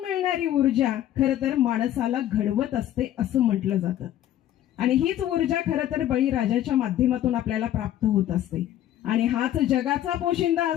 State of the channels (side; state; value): right; quieter; 12.2 dB